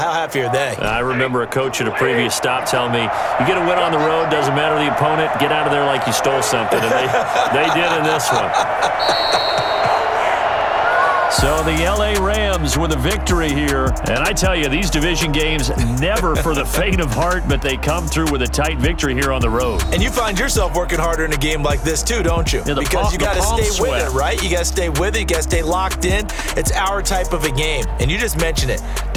are they? I remember a coach at a previous stop telling me, you get a win on the road, doesn't matter the opponent, get out of there like you stole something, and they did in this one. So the L.A. Rams with a victory here. And I tell you, these division games, never for the faint of heart, but they come through with a tight victory here on the road. And you find yourself working harder in a game like this too, don't you? Yeah, because you got to stay with it, right? You got to stay with it. You got to stay locked in. It's our type of a game. And you just mentioned it.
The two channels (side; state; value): both; identical; correlation 1.00